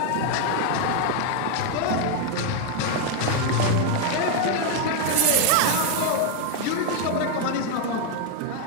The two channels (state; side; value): different; both; correlation 0.00